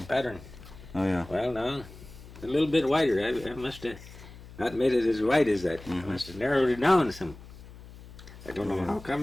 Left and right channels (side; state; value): left; noise; hum, 18 dB below the sound